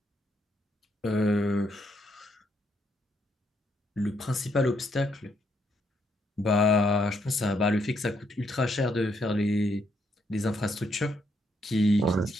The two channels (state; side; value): normal; both; correlation 0.75